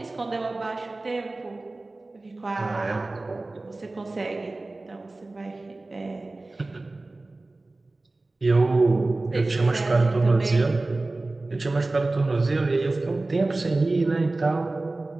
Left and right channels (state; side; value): quieter; left; 3.1 dB